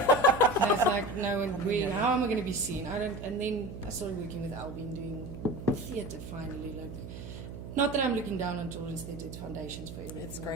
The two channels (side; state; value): right; noise; hum, 10 dB below the sound